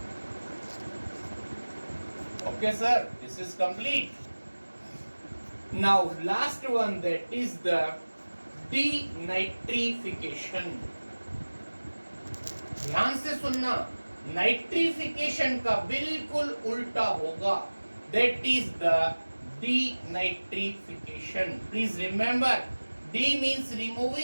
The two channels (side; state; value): both; inverted; correlation -1.00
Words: Okay, sir, this is complete. Now, last one, that is the denitrification. ध्यान से सुनना, nitrification का बिल्कुल उल्टा होगा, that is the denitrification. Please remember, D means